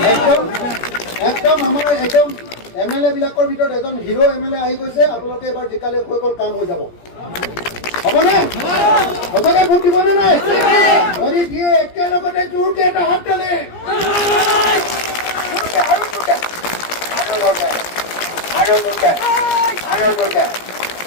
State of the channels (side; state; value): right; late; 17 ms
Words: একদম আমাৰ একদম এমএলএ বিলাকৰ ভিতৰত এজন হিৰো এমএলএ আহি গৈছে আপোনালোকে এবাৰ জিকালে হৈ গ'ল কাম হৈ যাব হ'বনে সঁচাকে ভোট দিবনে নাই যদি দিয়ে একেলগতে জোৰকে এটা হাত তালে আৰু জোৰকে